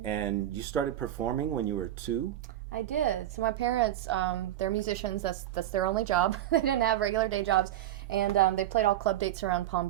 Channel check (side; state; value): left; quieter; 12.9 dB